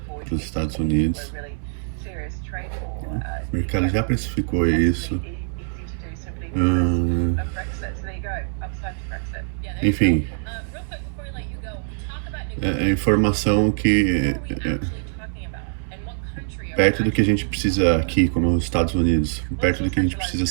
para os Estados Unidos. O mercado já precificou isso. Easy to do simply of Brexit. So there you go. Upside to Brexit. Yeah, there you Enfim, go. Real quick before we let you go, talk about é negotiations. informação que Who are we actually talking about? And what country are we perto do que a actually gente precisa aqui, como os Estados Unidos, perto do que a gente precisa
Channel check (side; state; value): left; silent; 63 dB below the other